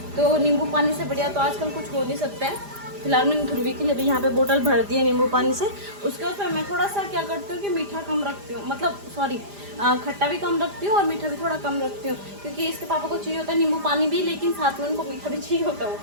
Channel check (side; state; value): left; late; 5.0 ms